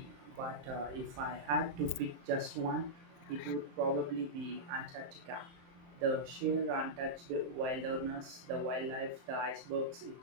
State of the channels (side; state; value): left; late; 23 ms